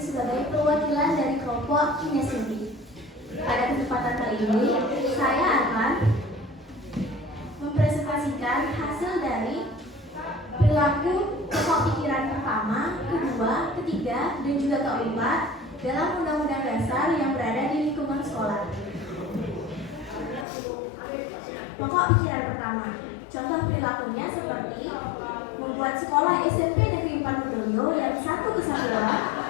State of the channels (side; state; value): right; drops out; at 20.5 s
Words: perwakilan dari kelompok kinestetik. Pada kesempatan kali ini, saya akan mempresentasikan hasil dari perilaku pokok pikiran pertama, kedua, ketiga, dan juga keempat dalam Undang-Undang Dasar yang berada di lingkungan sekolah. Pokok pikiran pertama, contoh perilakunya seperti membuat sekolah SMP Negeri 4 Medoyo yang satu kesatuan,